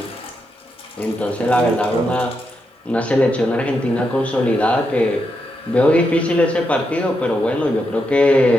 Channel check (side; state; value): both; normal; correlation 0.83